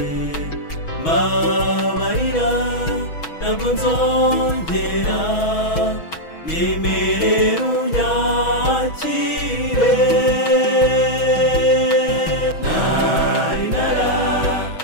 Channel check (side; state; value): right; late; 6.2 ms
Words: mbabarira ntabwo nzongera nyemerera unyakire nari